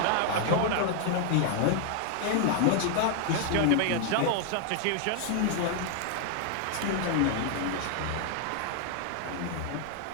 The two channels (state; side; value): different; both; correlation 0.00